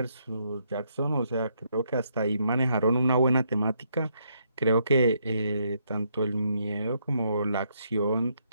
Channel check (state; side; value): inverted; both; correlation -0.75